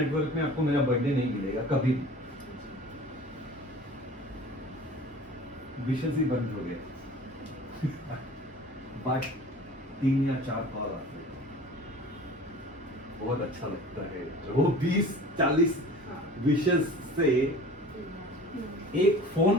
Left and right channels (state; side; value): normal; both; correlation 0.42